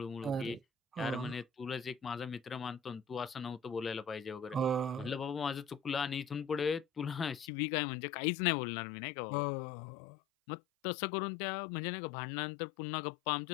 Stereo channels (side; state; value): right; drops out; at 7.5 s